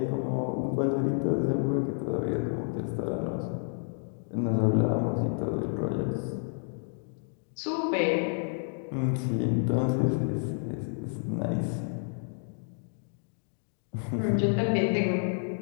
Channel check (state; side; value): silent; right; 58 dB below the other